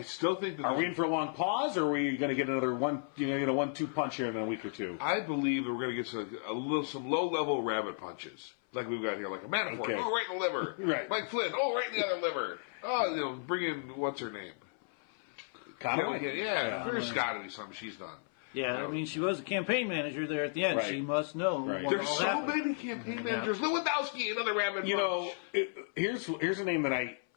still think that... Are we in for a long pause, or are we going to get another 1-2 punch here in a week or two? I believe that we're going to get some low-level rabbit punches. Like we've got here, like a Manafort. Okay. Oh, right in the liver. Right. Mike Flynn. Oh, right in the other liver. Oh, bring in, what's her name? Conway? Yeah, there's got to be something she's done. Yeah, I mean, she was a campaign manager there at the end. Right. She must know. Right. There's so many campaign managers. Lewandowski, another rabbit punch. Here's a name that I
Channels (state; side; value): silent; right; 55 dB below the other